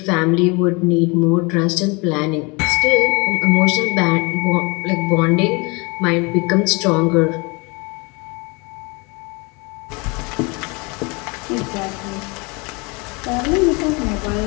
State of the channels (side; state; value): right; quieter; 28.7 dB